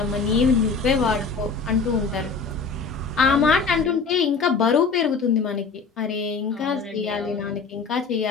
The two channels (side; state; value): right; quieter; 4.8 dB